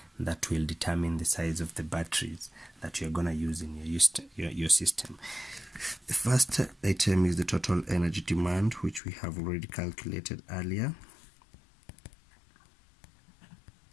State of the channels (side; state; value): right; drops out; at 9.0 s